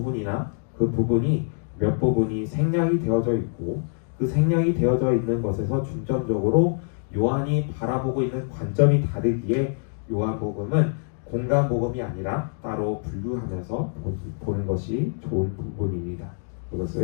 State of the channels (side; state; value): right; silent; digital silence